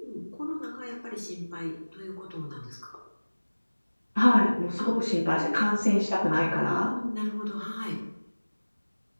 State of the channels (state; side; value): inverted; both; correlation -1.00